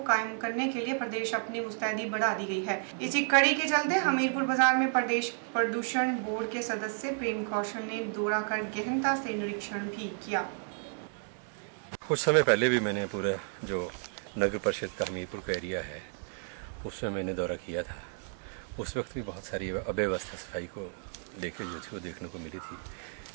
करने के लिए प्रदेश अपनी मुस्तैदी बढ़ा दी गई है। इसी कड़ी के चलते हमीरपुर बाजार में प्रदेश प्रदूषण बोर्ड के सदस्य प्रेम कौशल ने दौरा कर गहनता से निरीक्षण भी किया। कुछ समय पहले भी मैंने पूरा जो नगर परिषद का हमीरपुर का एरिया है उसमें मैंने दौरा किया था। उस वक्त भी बहुत सारी अव्यवस्था सफाई को लेकर जो थी वो देखने को मिली थी,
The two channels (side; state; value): left; silent; 57 dB below the other